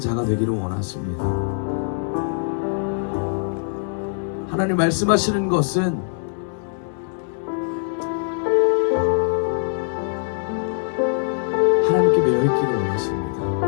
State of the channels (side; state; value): right; silent; 64 dB below the other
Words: 되기를 원하십니다. 하나님 말씀하시는 것은 깨어있기를 원하십니다.